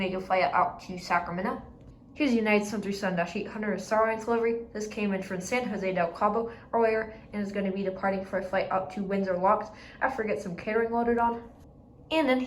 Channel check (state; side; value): identical; both; correlation 1.00